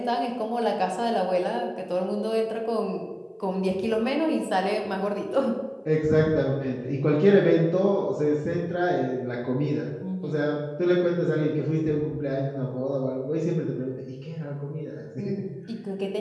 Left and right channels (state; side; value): identical; both; correlation 1.00